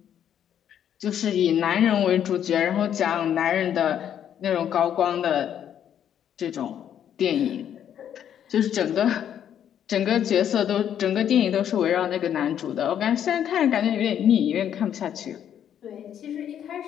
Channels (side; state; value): right; quieter; 9.6 dB